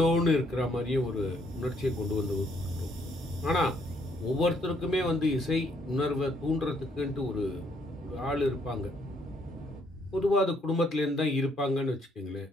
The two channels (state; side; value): normal; both; correlation 0.69